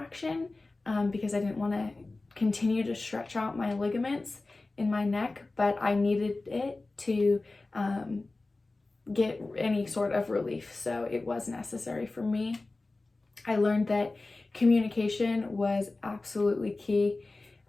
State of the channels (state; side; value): quieter; right; 3.2 dB